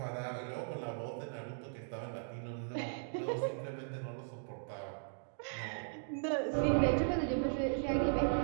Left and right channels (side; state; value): left; silent; digital silence